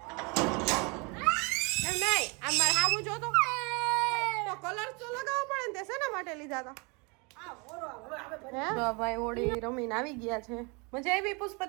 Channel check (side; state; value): left; quieter; 30.6 dB